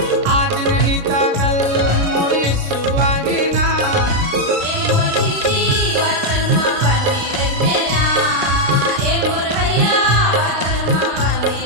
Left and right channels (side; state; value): left; late; 36 ms